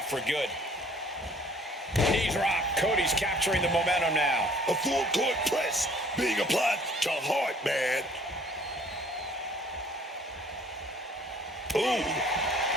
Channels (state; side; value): normal; both; correlation 0.55